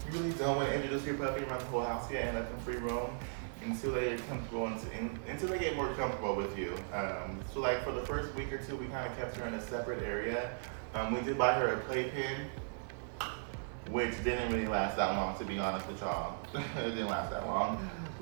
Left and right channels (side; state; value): left; silent; 53 dB below the other